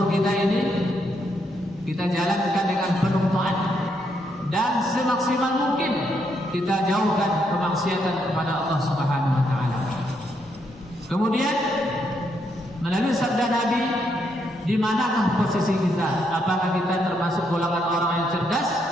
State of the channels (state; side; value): normal; both; correlation 0.76